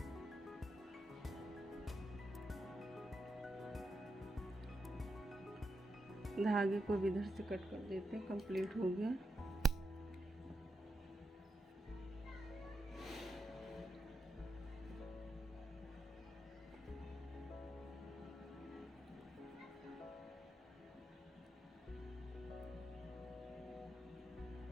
धागे को भी इधर से कट कर देते हैं। कंप्लीट हो गया।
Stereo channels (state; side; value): normal; both; correlation 0.85